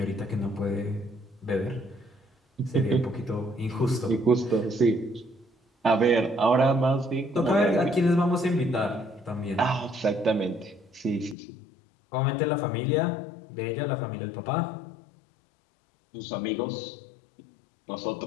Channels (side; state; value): right; drops out; at 11.4 s